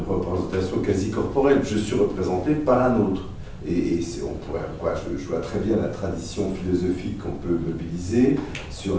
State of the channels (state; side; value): identical; both; correlation 1.00